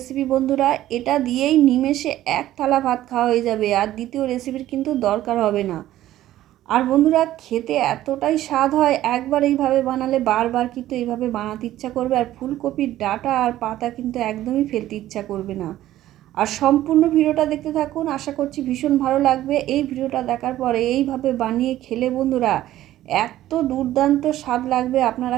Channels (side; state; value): left; quieter; 13.9 dB